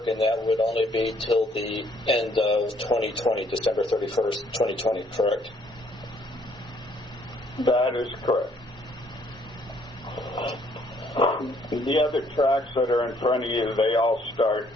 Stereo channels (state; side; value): normal; both; correlation 0.65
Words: and that would only be till the end of 2020, December 31st, 2020, correct? That is correct. The other tracks that are in front of you, they all start